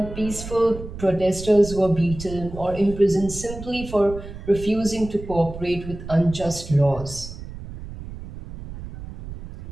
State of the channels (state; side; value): noise; right; rumble, 12 dB below the sound